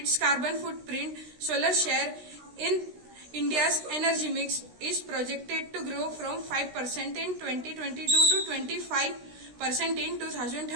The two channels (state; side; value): late; left; 16 ms